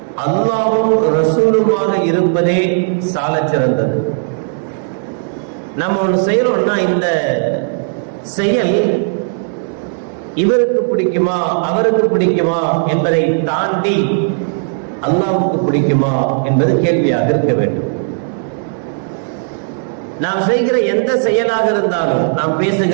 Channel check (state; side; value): silent; left; digital silence